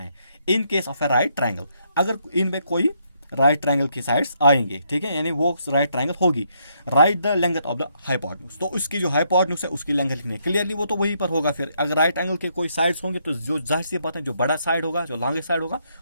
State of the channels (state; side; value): inverted; both; correlation -0.74